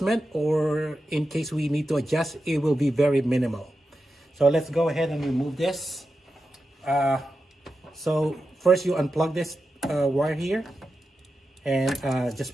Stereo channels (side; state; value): both; normal; correlation 0.90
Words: or in case we need to adjust, it will be very minimal. So let's go ahead and remove this. So first you unplug this wire here and